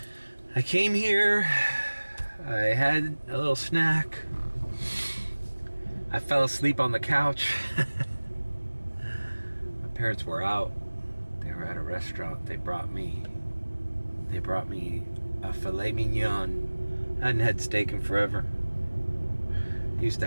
I came here, I had a little snack, I fell asleep on the couch. My parents were out, they were at a restaurant, they brought me a Filet Mignon. I hadn't had steak in forever. I used to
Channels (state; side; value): inverted; both; correlation -1.00